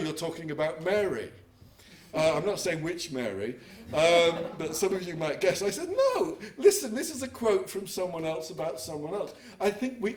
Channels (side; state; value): both; identical; correlation 1.00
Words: talking about Mary." I'm not saying which Mary, but some of you might guess. I said, "No, listen, this is a quote from someone else about someone else." I think we